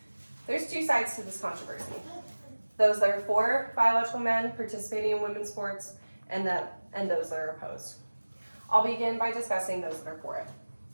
There's two sides to this controversy. Those that are for biological men participating in women's sports and those that are opposed. I'll begin by discussing those that are for it.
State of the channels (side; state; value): both; inverted; correlation -1.00